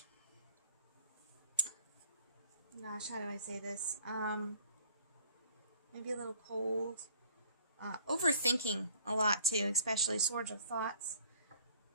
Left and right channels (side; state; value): both; inverted; correlation -0.57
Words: Gosh, how do I say this? Maybe a little cold. Overthinking a lot too, especially Swords of Thoughts.